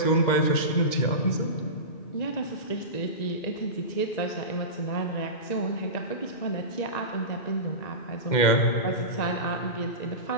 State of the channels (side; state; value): right; late; 2.1 ms